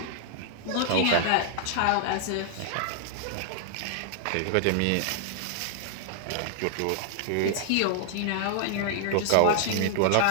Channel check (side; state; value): both; different; correlation -0.01